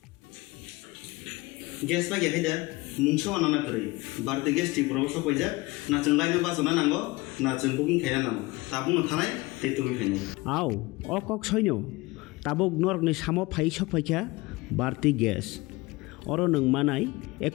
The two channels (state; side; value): quieter; right; 22.0 dB